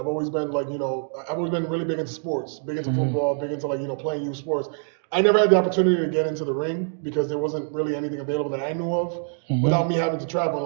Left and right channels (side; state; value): left; silent; 61 dB below the other